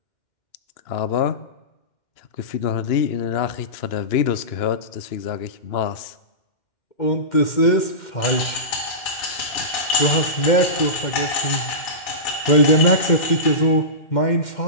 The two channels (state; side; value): late; right; 2.1 ms